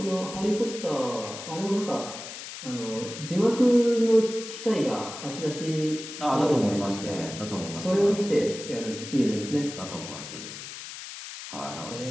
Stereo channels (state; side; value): noise; left; hiss, 11 dB below the sound